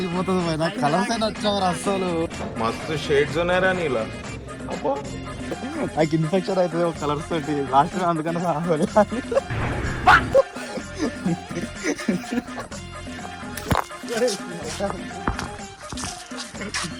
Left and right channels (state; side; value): identical; both; correlation 1.00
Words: పోయినా, కలర్స్ అయినా వచ్చావు అస్సలు. మస్తు షేడ్స్ ఉన్నాయరా నీలా. నాకు ఇన్ఫెక్షన్ అవుతుంది ఒక కలర్స్ తోటి లాస్ట్ అందుకని